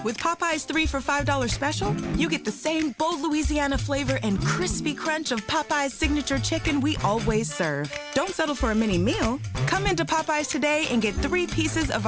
With Popeye's 3 for $5 special, you get the same bold Louisiana flavor and crispy crunch of Popeye's signature chicken we always serve. Don't settle for a mini meal. Come into Popeye's today and get 3 pieces of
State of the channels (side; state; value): both; identical; correlation 1.00